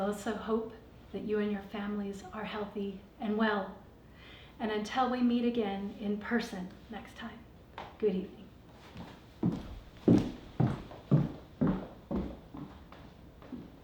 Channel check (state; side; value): identical; both; correlation 1.00